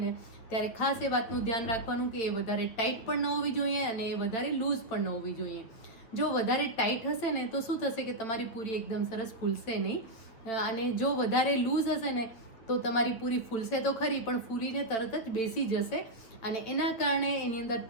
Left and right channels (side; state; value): right; late; 8.7 ms